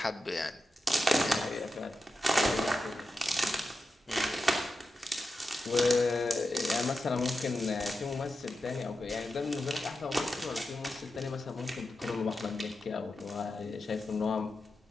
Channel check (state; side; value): normal; both; correlation 0.90